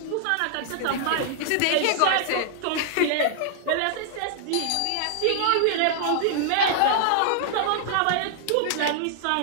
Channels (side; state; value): both; different; correlation -0.01